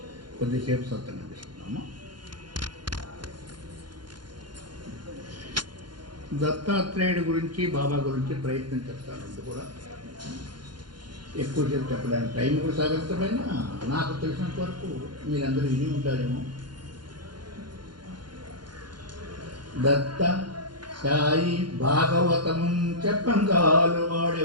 కొద్దిసేపు సత్సంగం తీసుకున్నాము. దత్తాత్రేయుడి గురించి బాబా గురించి ప్రయత్నం చేస్తానంటే కూడా ఎక్కువసేపు చెప్పడానికి టైం కూడా సాగకపోయినా నాకు తెలిసినంత వరకు మీరందరూ విని ఉంటారేమో. దత్త సాయి భాగవతం చెప్పంగాలు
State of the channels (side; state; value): left; late; 0.71 ms